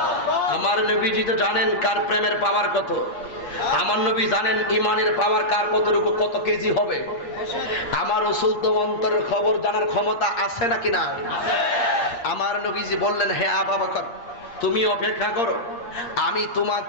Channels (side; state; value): right; late; 8.5 ms